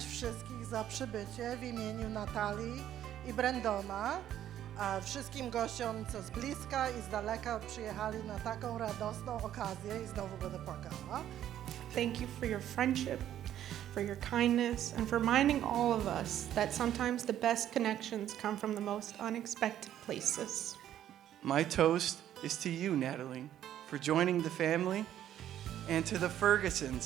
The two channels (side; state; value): left; quieter; 11.3 dB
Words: wszystkich za przybycie w imieniu Natalii i Brandona, a wszystkim gościom, co z bliska i z daleka przyjechali na taką radosną okazję i znowu będę płakała. Thank you for your friendship, for your kindness, and for reminding all of us that sometimes the best connections come from the most unexpected places. My toast is to you, Natalie, for joining the family, and to the